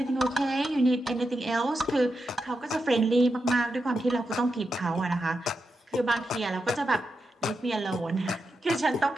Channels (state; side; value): normal; both; correlation 0.87